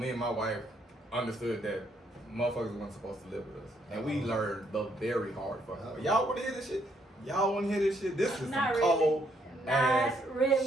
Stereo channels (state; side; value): normal; both; correlation 0.72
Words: and my wife understood that motherfuckers weren't supposed to live with us. And we learned the very hard fucking way. Y'all wanna hear this shit? Y'all wanna hear this shit? This is some Not really. cold ass Not